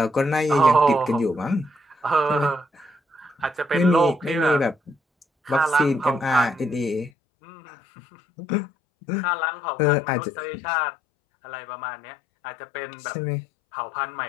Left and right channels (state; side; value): drops out; right; at 7.1 s